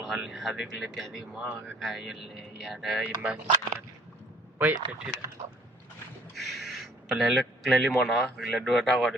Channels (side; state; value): both; normal; correlation 0.57